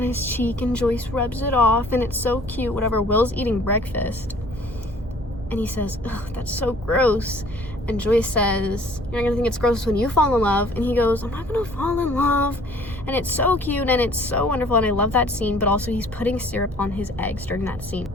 his cheek, and Joyce rubs it off, and it's so cute, whatever. Will's eating breakfast, and he says, ugh, that's so gross. And Joyce says, you're not gonna think it's gross when you fall in love. And he goes, I'm not gonna fall in love. And it's so cute, and it's so wonderful, and I love that scene, but also he's putting syrup on his eggs during that scene.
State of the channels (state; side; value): normal; both; correlation 0.54